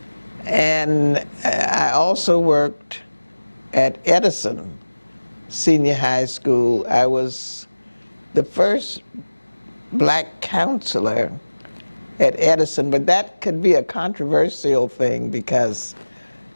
And I also worked at Edison Senior High School. I was the first black counselor at Edison, but that could be a controversial thing because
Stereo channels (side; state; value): both; inverted; correlation -1.00